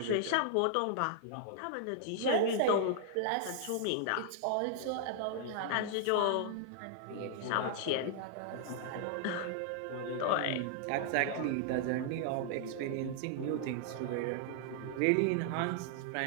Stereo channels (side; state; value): both; different; correlation -0.01